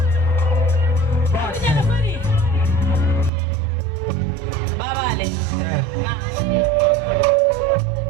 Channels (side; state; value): left; drops out; at 3.3 s